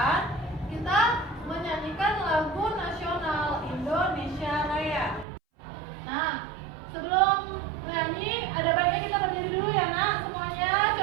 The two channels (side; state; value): left; drops out; at 5.2 s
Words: kita menyanyikan lagu nasional Indonesia Raya. Nah, sebelum nyanyi, ada baiknya kita berdiri dulu ya nak, semuanya.